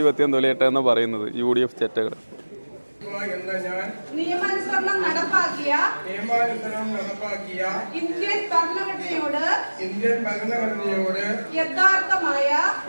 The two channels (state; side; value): inverted; both; correlation -1.00